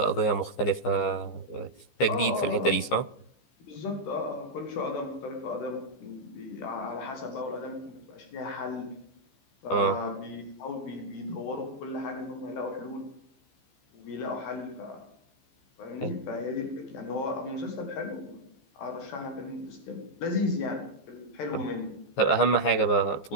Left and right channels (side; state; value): right; late; 15 ms